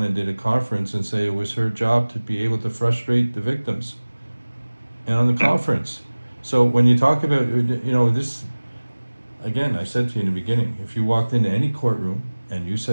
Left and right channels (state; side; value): inverted; both; correlation -1.00